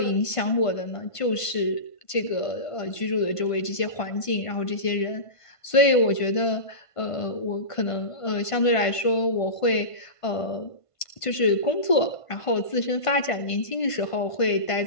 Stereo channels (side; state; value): right; late; 1.5 ms